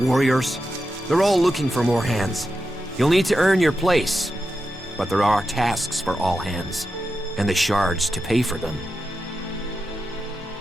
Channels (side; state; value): both; normal; correlation 0.89